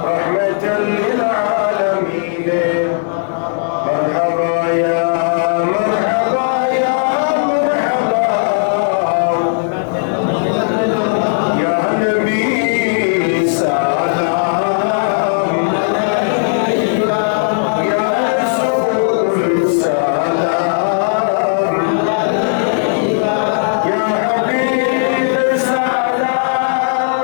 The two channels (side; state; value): right; silent; digital silence